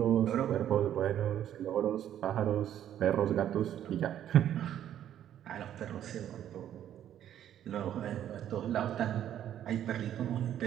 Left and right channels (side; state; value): left; quieter; 10.8 dB